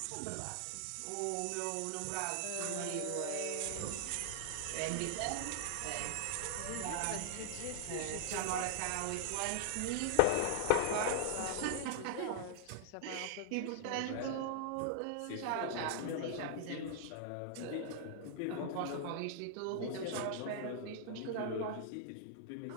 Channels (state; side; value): different; both; correlation 0.00